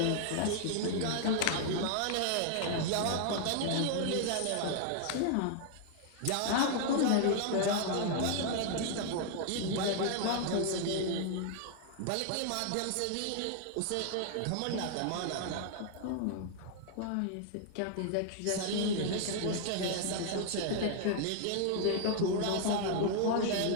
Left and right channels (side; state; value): both; different; correlation 0.00